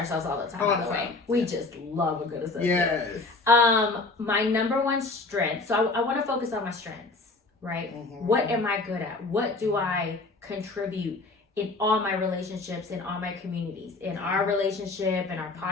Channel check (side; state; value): right; quieter; 3.4 dB